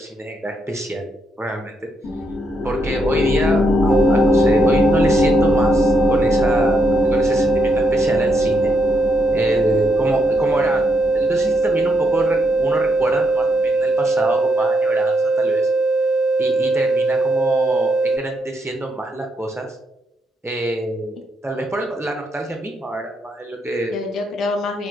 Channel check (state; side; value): normal; both; correlation 0.78